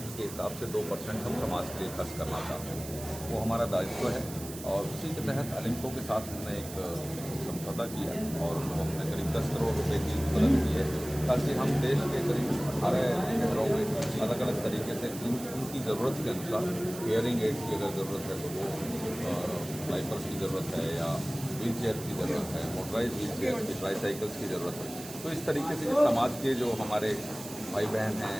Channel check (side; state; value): right; noise; hiss, 12 dB below the sound